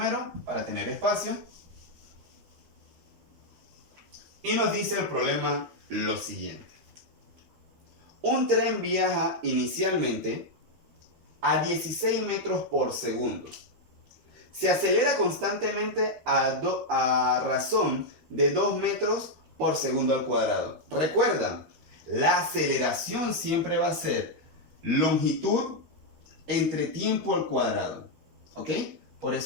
para tener espacio. Y nos dice el problema lo siguiente. Un tren viaja inicialmente a 16 metros por segundo. Se acelera constantemente a razón de 2 metros por segundo al cuadrado. Recuerda, la aceleración siempre va a ser longitud entre tiempo al cuadrado. ¿Ok? Por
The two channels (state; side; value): late; left; 13 ms